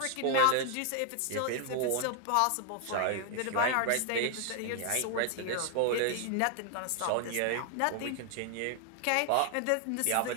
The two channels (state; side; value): different; both; correlation 0.00